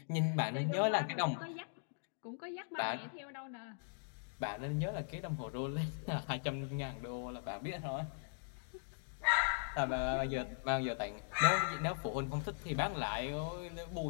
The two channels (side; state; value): right; silent; digital silence